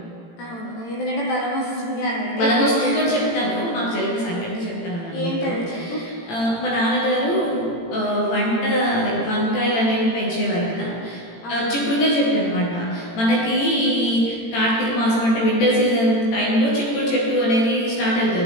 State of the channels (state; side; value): late; right; 18 ms